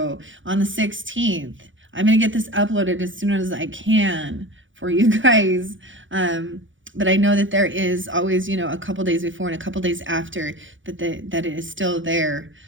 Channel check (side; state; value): left; late; 0.56 ms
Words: on the 16th, I'm going to get this uploaded as soon as I can for you guys. But I know that there is always, a couple days before and a couple days after that it is still there,